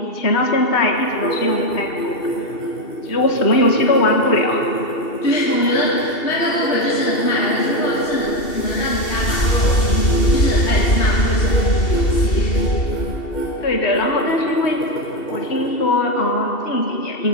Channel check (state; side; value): late; right; 2.7 ms